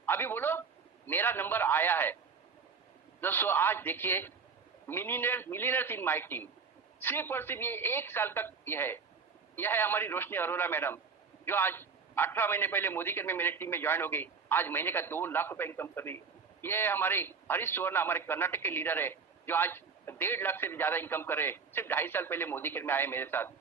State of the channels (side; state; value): left; quieter; 5.5 dB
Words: बोलो मेरा नंबर आया है। दोस्तों आज देखिए मिलीनियर्स इन माय टीम, सिर्फ और सिर्फ ये 1 साल तक यह है हमारी रोशनी अरोरा मैडम, जो आज 18 महीने पहले मोदी केयर में मेरे टीम में ज्वाइन हो गई, आज महीने का 2 लाख रुपए इनकम कर रही है। ये हमारे हरीश सुवर्णा, हमारे कर्नाटक के लीडर है, जो आज 1.5 लाख से भी ज्यादा इनकम कर रहे हैं, सिर्फ 2.5 साल पहले मोदी केयर में आए मेरे